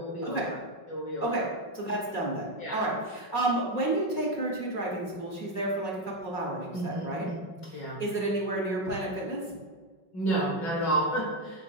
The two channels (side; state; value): right; late; 5.4 ms